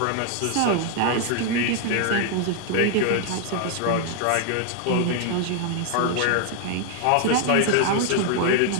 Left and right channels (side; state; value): both; different; correlation 0.00